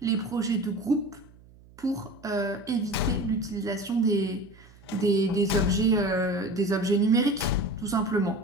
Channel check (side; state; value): right; noise; hum, 25 dB below the sound